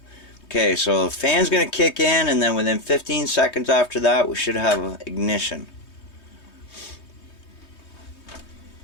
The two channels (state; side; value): late; right; 3.2 ms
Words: Okay, so the fan's gonna kick in, and then within 15 seconds after that, we should have ignition.